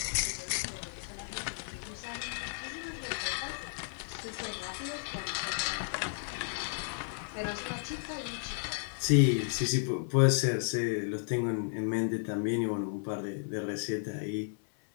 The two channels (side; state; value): right; silent; 55 dB below the other